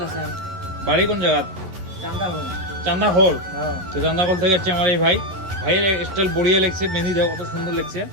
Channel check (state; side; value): late; left; 11 ms